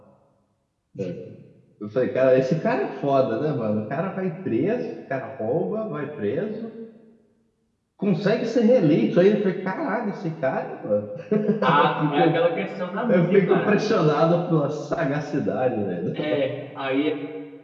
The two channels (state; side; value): identical; both; correlation 1.00